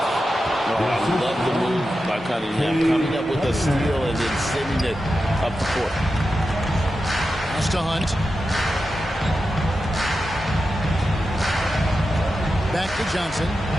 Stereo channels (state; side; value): normal; both; correlation 0.90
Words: I love the move by Cunningham, coming up with a steal and then sending it up the court. Pass to Hunt. Back to Johnson.